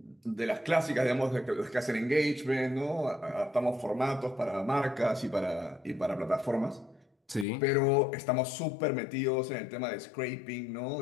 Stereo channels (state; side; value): drops out; right; at 7.5 s